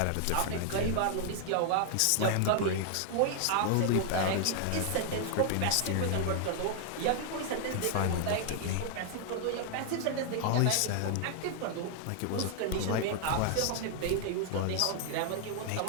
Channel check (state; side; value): different; both; correlation 0.00